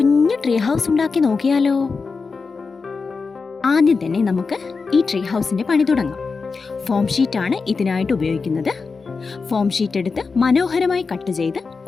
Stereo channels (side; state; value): right; quieter; 4.6 dB